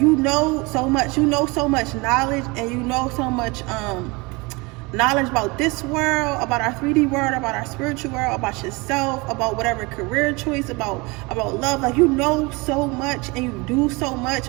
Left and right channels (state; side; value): quieter; left; 26.0 dB